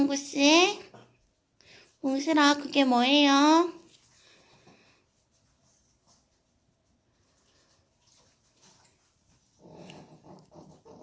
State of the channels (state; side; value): identical; both; correlation 1.00